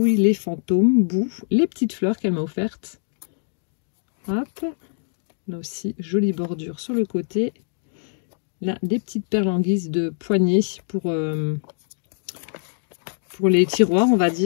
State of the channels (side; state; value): right; silent; digital silence